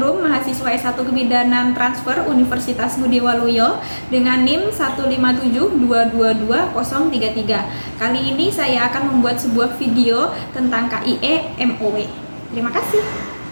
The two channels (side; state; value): both; inverted; correlation -1.00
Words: mahasiswa S1 Kebidanan Transfer Universitas Budi Waluyo dengan NIM 157222033. Kali ini saya akan membuat sebuah video tentang KIE MOW. Terima kasih.